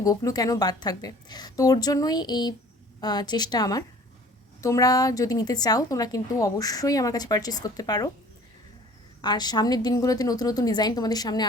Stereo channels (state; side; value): normal; both; correlation 0.49